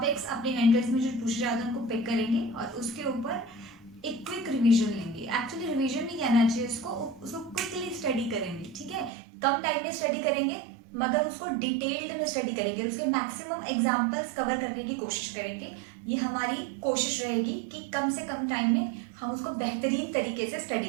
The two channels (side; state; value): left; drops out; at 9.1 s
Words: अपने एंट्रेंस में जो पूछे जाते हैं उनको पिक करेंगे और उसके ऊपर एक क्विक रिवीजन लेंगे। एक्चुअली रिवीजन नहीं कहना चाहिए उसको क्विकली स्टडी करेंगे। ठीक है, कम टाइम में स्टडी करेंगे मगर उसको डिटेल्ड में स्टडी करेंगे, उसके मैक्सिमम एग्जांपल्स कवर करने की कोशिश करेंगे। ये हमारी कोशिश रहेगी कि कम से कम टाइम में हम उसको बेहतरीन तरीके से